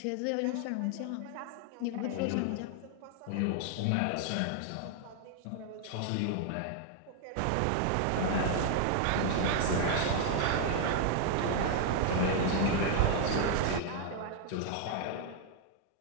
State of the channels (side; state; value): both; different; correlation 0.00